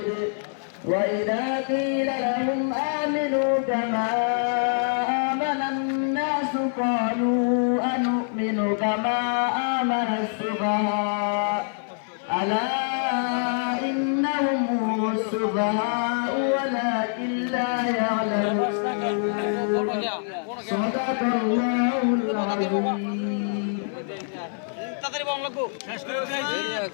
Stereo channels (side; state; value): right; silent; 55 dB below the other